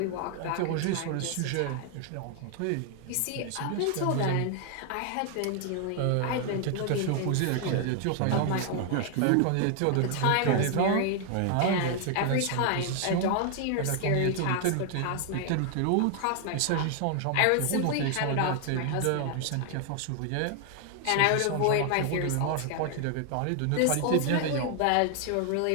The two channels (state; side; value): different; both; correlation 0.00